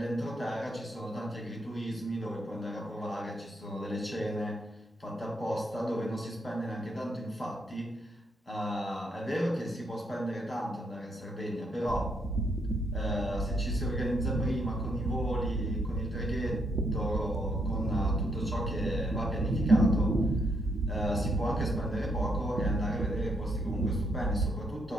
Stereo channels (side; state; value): both; normal; correlation 0.75